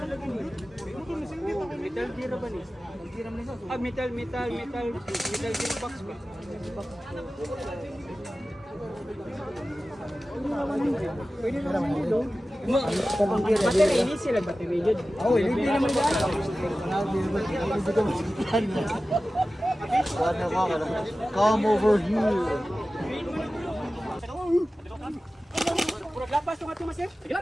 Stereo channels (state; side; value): normal; both; correlation 0.95